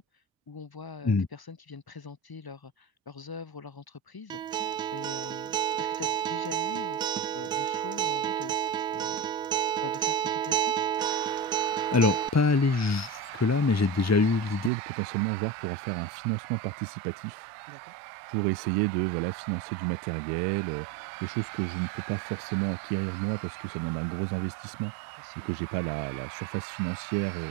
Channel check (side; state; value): left; drops out; at 14.7 s